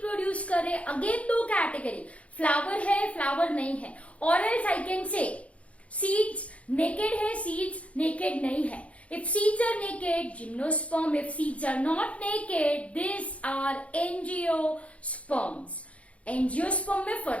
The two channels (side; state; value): right; late; 0.064 ms